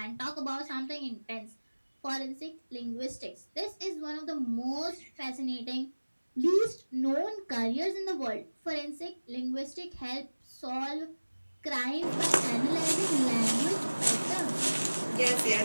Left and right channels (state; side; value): inverted; both; correlation -1.00